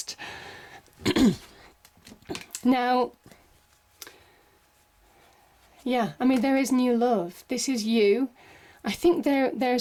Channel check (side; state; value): both; identical; correlation 1.00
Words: Now, yeah, I mean, there is new love. This is you. I think